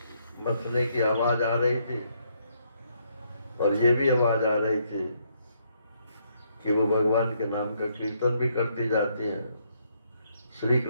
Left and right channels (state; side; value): inverted; both; correlation -0.73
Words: मथने की आवाज आ रही थी और ये भी आवाज आ रही थी कि वो भगवान के नाम का कीर्तन भी करती जाती हैं। श्री